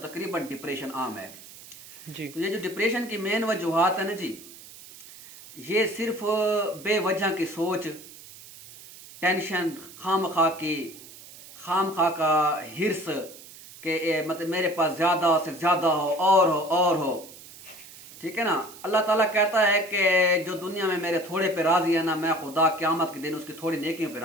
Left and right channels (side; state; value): right; noise; hiss, 18 dB below the sound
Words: तकरीबन डिप्रेशन आम है। जी तो ये जो डिप्रेशन की मेन वजूहात है ना जी, ये सिर्फ बेवजह की सोच, टेंशन, खाम खा का हिर्स के मतलब मेरे पास ज़्यादा से ज़्यादा हो और हो। ठीक है ना। अल्लाह ताला कहता है कि जो दुनिया में मेरे थोड़े पे राजी है ना, मैं खुदा क़यामत के दिन उसकी थोड़ी नेकियों पे